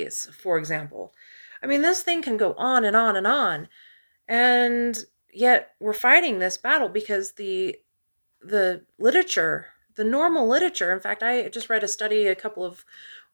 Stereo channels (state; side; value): inverted; both; correlation -1.00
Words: for example. I mean, this thing can go on and on and on. And yet we're fighting this battle because the literature, the normal literature, in fact, I just read a study a couple of